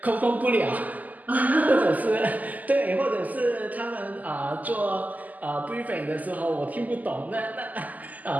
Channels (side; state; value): left; late; 0.080 ms